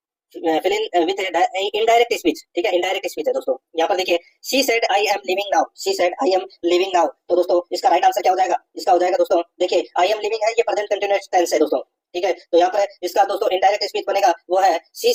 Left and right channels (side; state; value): both; identical; correlation 1.00